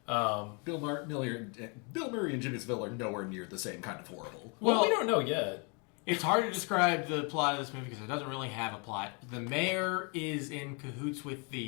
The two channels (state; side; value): quieter; right; 34.4 dB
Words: yeah. Bill Murray and Jimmy Savile are nowhere near the same kind of horrible. Well, we Well- don't know yet. It's hard to describe the plot of this movie because it doesn't really have a plot. The mayor is in cahoots with